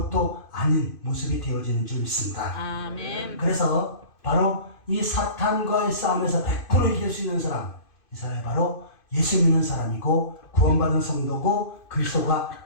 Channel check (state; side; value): late; right; 2.6 ms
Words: 아닌 모습이 되어지는 줄 믿습니다. 아멘. 그래서 바로 이 사탄과의 싸움에서 100% 이길 수 있는 사람, 이 사람이 바로 예수 믿는 사람이고 구원받은 성도고